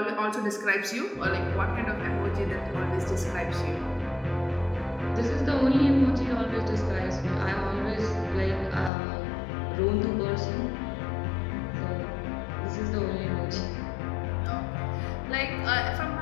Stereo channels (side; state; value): right; drops out; at 8.9 s